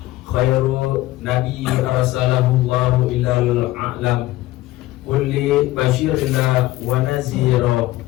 khairu nabi arsalahu Allahu ilal a'lam kulli basyirina wa nazira.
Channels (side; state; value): right; quieter; 17.1 dB